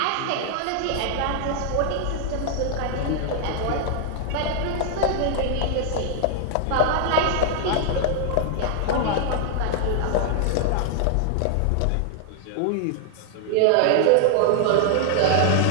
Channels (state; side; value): different; both; correlation -0.01